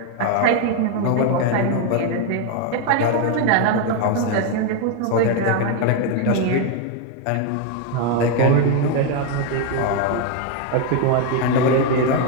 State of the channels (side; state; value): both; different; correlation 0.01